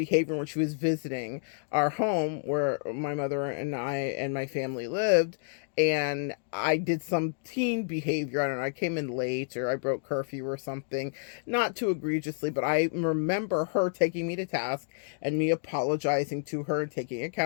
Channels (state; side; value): silent; right; digital silence